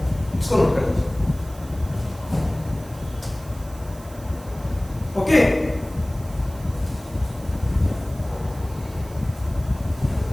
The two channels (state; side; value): noise; right; hiss, 21 dB below the sound